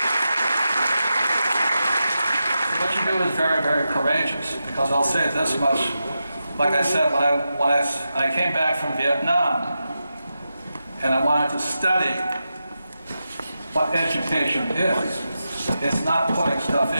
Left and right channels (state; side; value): inverted; both; correlation -0.89